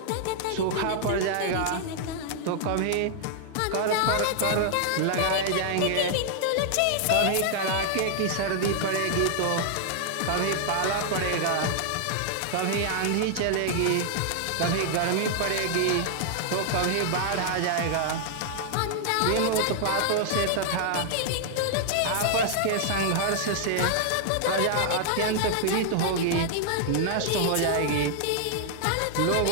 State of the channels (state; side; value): different; both; correlation 0.00